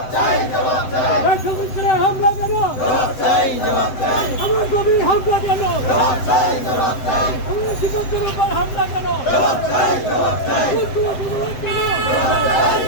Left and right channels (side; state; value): right; late; 7.8 ms